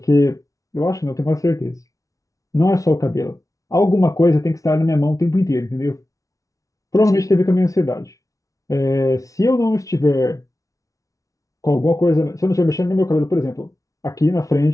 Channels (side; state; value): right; late; 0.17 ms